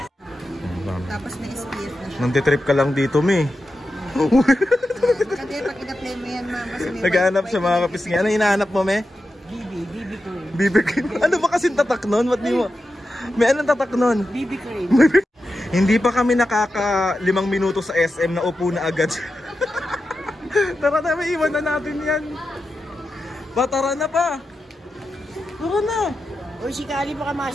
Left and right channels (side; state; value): both; normal; correlation 0.90